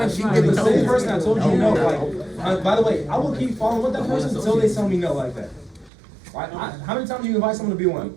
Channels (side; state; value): left; drops out; at 5.9 s